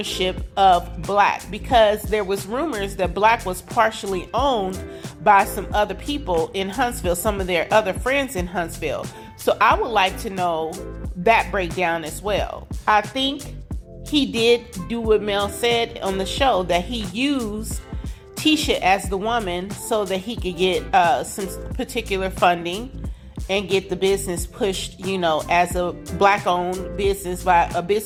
of Black, because there was rumors that Black was partially owned by some other people in Huntsville, some of their other friends in Huntsville. So I would like to know that breakdown as well. I think he did do what Mel said on the show, that he used Tisha as the woman so that he could get some particular funding and get the business pushed, as a Black-owned business, by a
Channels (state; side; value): identical; both; correlation 1.00